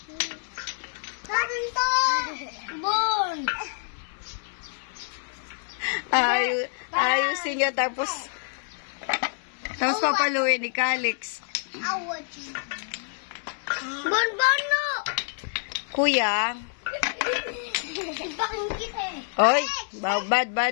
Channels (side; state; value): right; silent; 60 dB below the other